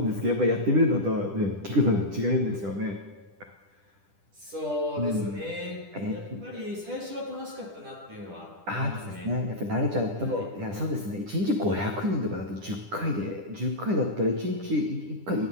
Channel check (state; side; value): late; left; 10 ms